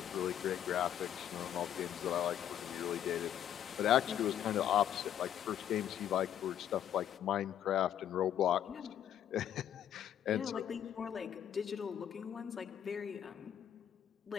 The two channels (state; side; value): quieter; right; 10.3 dB